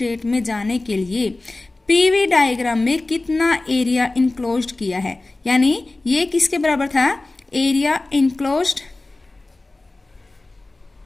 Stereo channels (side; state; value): right; quieter; 3.0 dB